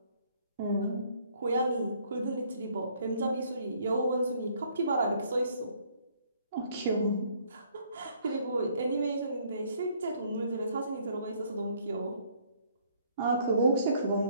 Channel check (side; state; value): both; inverted; correlation -0.63